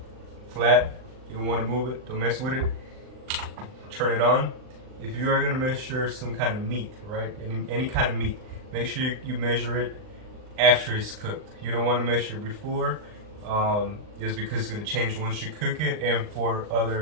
flat. You don't want to move it, don't mess with it. Turn it on. If you are going to measure some kind of meat, right, any kind of meat, make sure you measure it after it's cooked. You don't want to measure it before, just because it's going to change once you cook it, and for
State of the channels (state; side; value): late; left; 39 ms